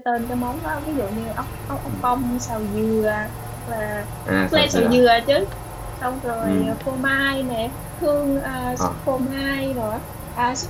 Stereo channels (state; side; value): identical; both; correlation 1.00